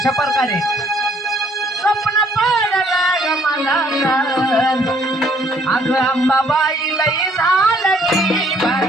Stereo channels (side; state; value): both; normal; correlation 0.63